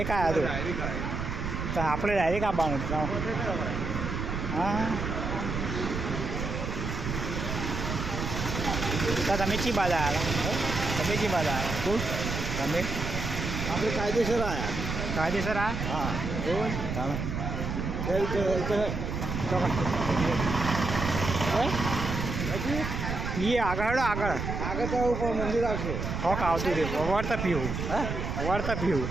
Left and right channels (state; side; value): noise; right; rumble, 3 dB below the sound